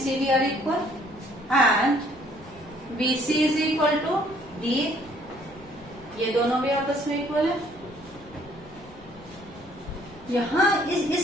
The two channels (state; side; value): normal; both; correlation 0.62